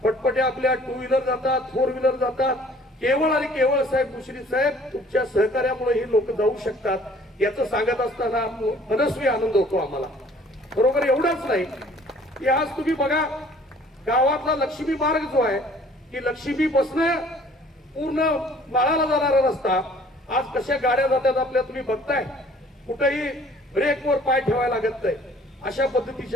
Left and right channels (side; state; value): both; normal; correlation 0.55